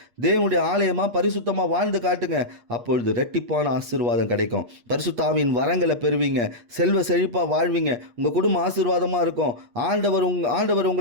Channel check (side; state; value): left; late; 8.4 ms